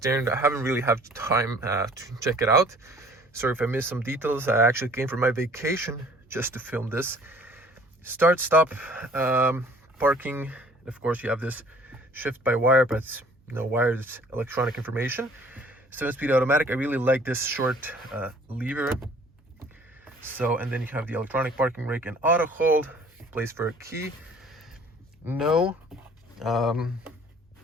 I haven't really had time to check it out. Sorry if I missed some details. I actually came from my vacation just to film this. Start, stop, parking. Of course, you have this shift by wire, but it's no wire, it's electronic information. 7-speed automatic. I really like this short lever. So, and then you have the electronic parking brake and auto hold, place for a key. No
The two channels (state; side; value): normal; both; correlation 0.53